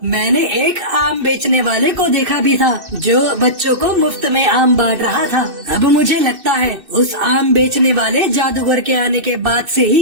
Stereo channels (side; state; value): left; late; 2.6 ms